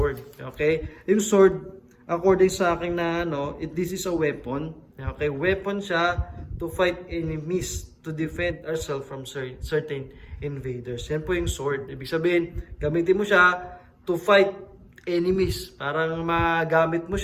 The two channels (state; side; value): identical; both; correlation 1.00